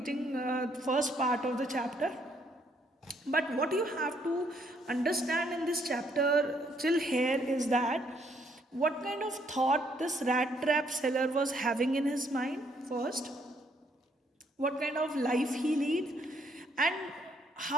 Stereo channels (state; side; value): normal; both; correlation 0.69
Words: the first part of the chapter. But what you have to understand in this chapter till here is that What kind of thought this rat trap seller was having in his mind first, what kind of life he lead, and